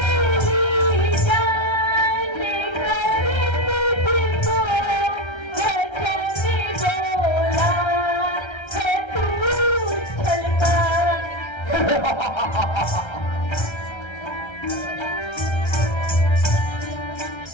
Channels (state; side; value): late; right; 1.3 ms